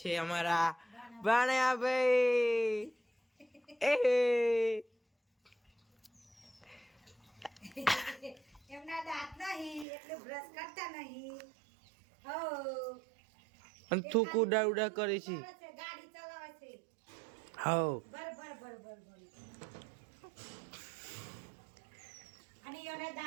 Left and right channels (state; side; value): drops out; left; at 9.9 s